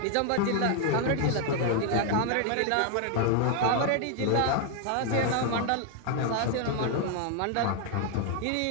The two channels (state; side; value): different; both; correlation 0.00